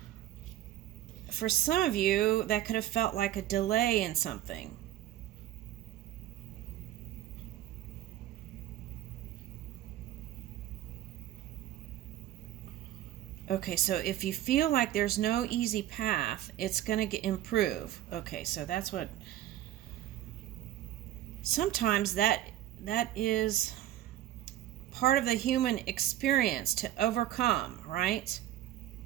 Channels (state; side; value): quieter; left; 13.1 dB